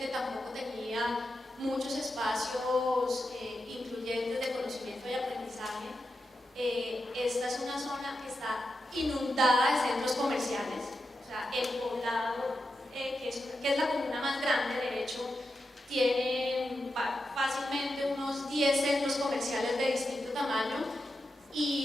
tampoco tenía muchos espacios incluyentes de conocimiento y aprendizaje. Esta es una zona que está inundada de centros comerciales. O sea, El Poblado, que es la comuna más grande, de hecho, tiene fácilmente unos 10 centros comerciales de distinto tamaño,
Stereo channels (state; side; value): normal; both; correlation 0.88